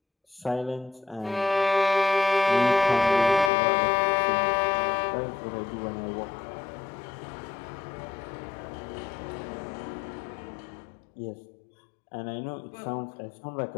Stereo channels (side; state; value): right; drops out; at 3.5 s